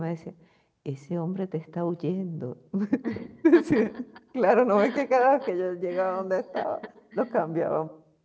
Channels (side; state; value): both; identical; correlation 1.00